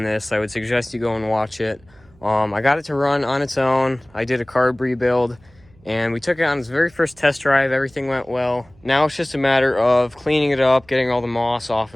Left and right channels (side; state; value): right; noise; hum, 29 dB below the sound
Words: this, I would suggest you go and watch it. I got it to run on its own. I did a carb rebuild. And we took it on its very first test drive. Everything went well. Now it's just a matter of cleaning it up, getting all the moss off